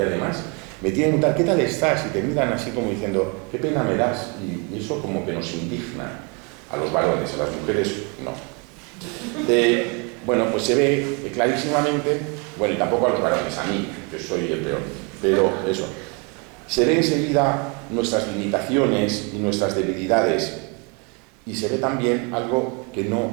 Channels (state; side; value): quieter; left; 32.6 dB